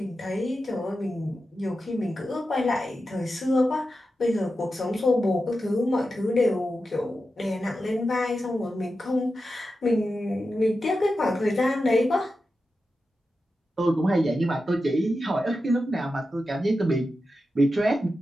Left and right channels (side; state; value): both; normal; correlation 0.91